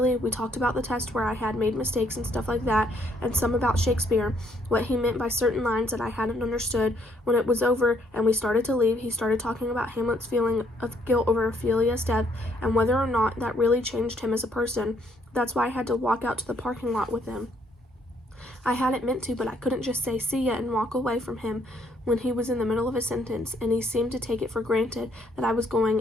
We talked about the test where I had made mistakes and stuff like that, and some about Shakespeare, what he meant by certain lines that I hadn't understood. When it was over and we started to leave, he started talking about Hamlet's feeling of guilt over Ophelia's death, and whether or not that really changed him as a person. That's why I had to walk out to the parking lot with him. I hadn't meant to, but I couldn't just say see ya and walk away from him when he was in the middle of a sentence, and he seemed to take it for granted that I was going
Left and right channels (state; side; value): normal; both; correlation 0.69